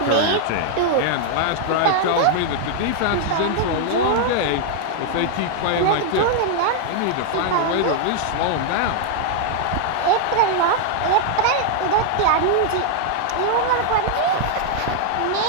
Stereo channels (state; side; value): different; both; correlation 0.00